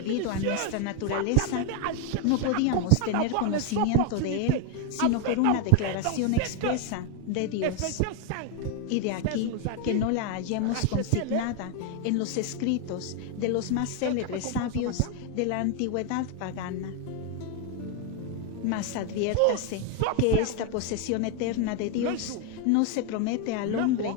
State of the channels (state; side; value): different; both; correlation 0.01